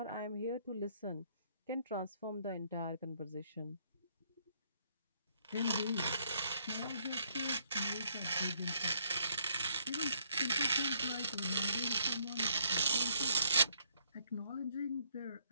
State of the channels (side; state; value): both; inverted; correlation -0.69